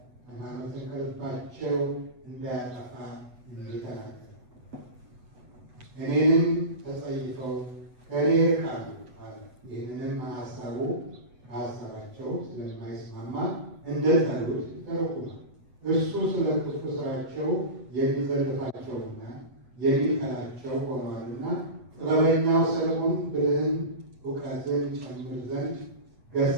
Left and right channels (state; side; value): late; left; 8.1 ms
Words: ሃይማኖትን ከልባቸው እንዳያጠፋ እንዲተናገር እኔንም ተጸይፈው ከእኔ ይርቃሉ አለ። ይህንንም ከሀሳባቸው ስለማይስማማ እንደ ጠሉት ይተረጉማል። እርሱ ስለ ክፉ ስራቸው የሚዘልፋቸውና የሚጠላቸው ሆነዋልና ጥበበኛው ሰለሞን ብልህን እውቀትን ጨምር ዘንድ